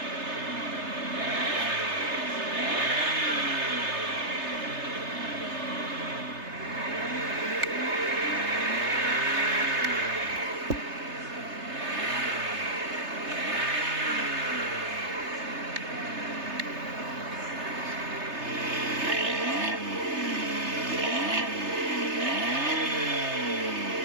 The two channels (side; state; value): left; late; 3.3 ms